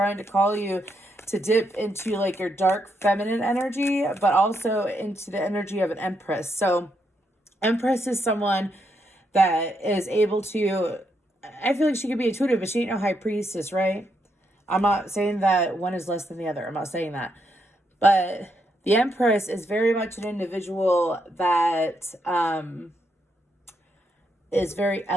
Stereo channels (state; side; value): normal; both; correlation 0.79